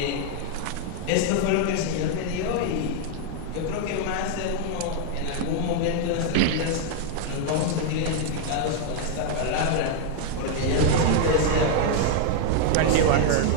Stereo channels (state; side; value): different; both; correlation 0.00